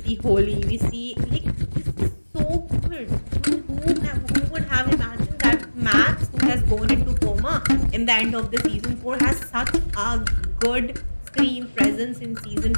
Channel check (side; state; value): both; inverted; correlation -1.00